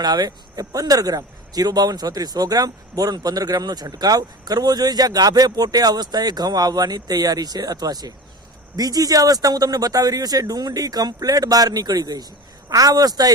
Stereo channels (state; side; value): normal; both; correlation 0.32